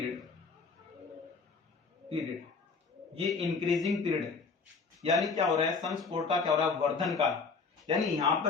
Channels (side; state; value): right; quieter; 4.7 dB